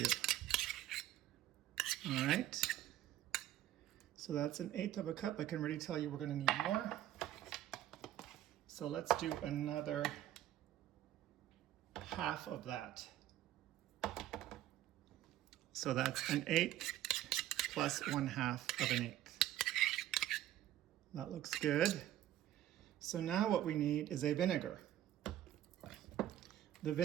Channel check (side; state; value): left; quieter; 13.0 dB